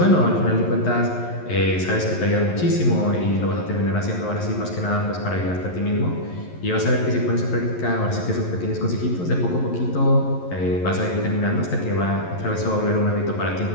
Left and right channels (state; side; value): late; right; 11 ms